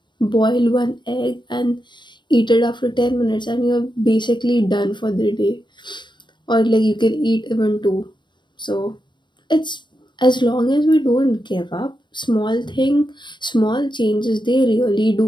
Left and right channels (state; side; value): late; right; 0.22 ms